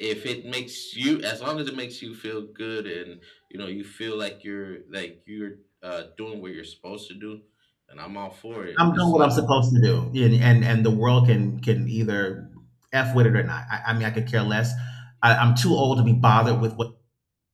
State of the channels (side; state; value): both; identical; correlation 1.00